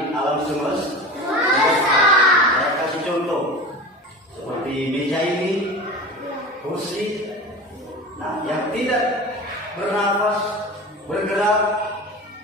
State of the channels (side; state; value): both; normal; correlation 0.32